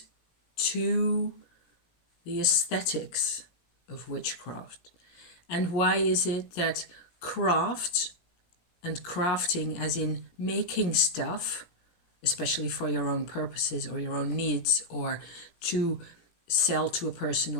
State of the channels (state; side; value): late; right; 17 ms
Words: to the aesthetics of witchcraft. And why is it that craft and crafting as in making stuff, especially for your own purposes or your own needs, or to sell to a person